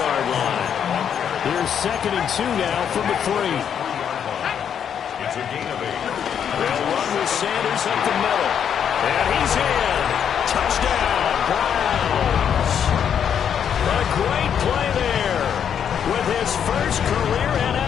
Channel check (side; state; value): right; quieter; 8.3 dB